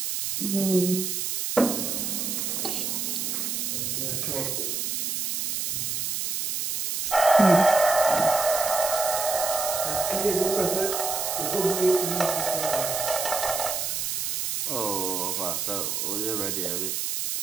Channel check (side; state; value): right; noise; hiss, 1 dB below the sound